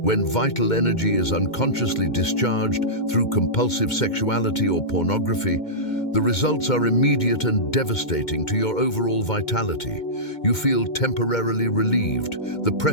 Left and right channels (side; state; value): right; late; 2.1 ms